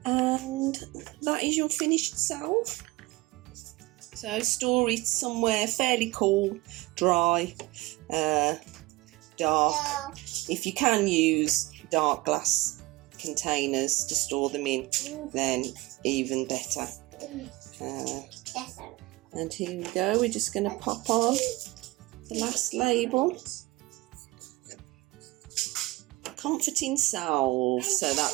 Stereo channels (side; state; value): left; quieter; 20.8 dB